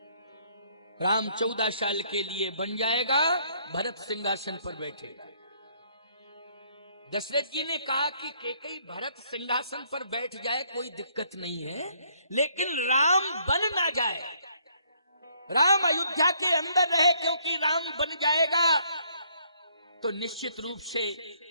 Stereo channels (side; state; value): both; inverted; correlation -0.66